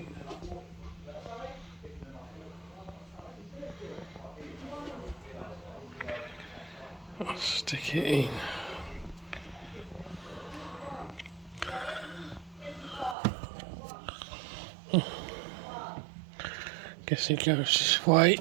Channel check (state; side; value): drops out; left; at 13.2 s